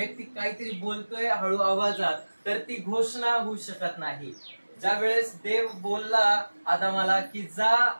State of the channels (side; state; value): both; inverted; correlation -1.00